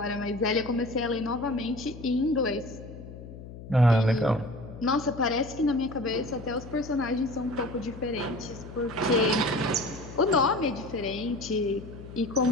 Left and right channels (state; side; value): noise; left; hum, 14 dB below the sound